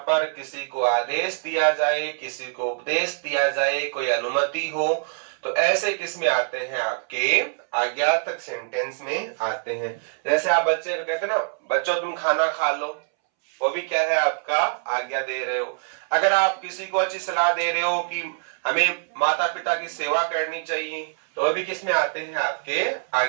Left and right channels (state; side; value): silent; left; 62 dB below the other